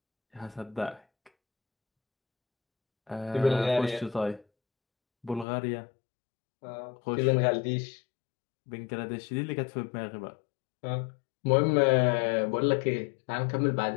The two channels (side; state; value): right; drops out; at 5.5 s